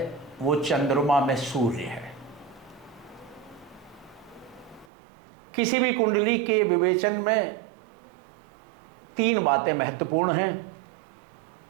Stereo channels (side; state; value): left; drops out; at 4.9 s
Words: वो चंद्रमा में सूर्य है. किसी भी कुंडली के विवेचन में 3 बातें महत्वपूर्ण हैं.